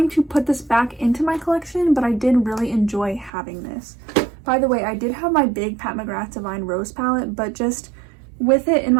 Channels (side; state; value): left; drops out; at 3.3 s